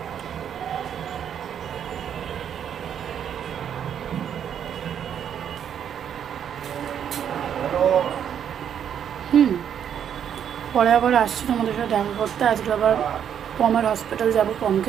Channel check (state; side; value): quieter; left; 8.8 dB